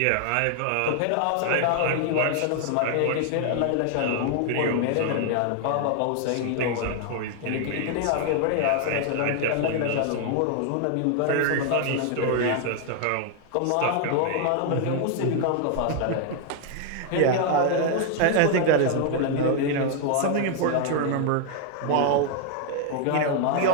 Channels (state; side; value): different; both; correlation 0.00